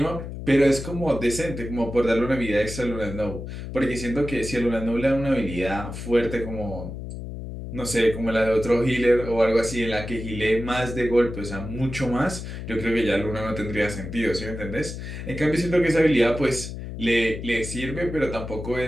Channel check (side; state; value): left; noise; hum, 8 dB below the sound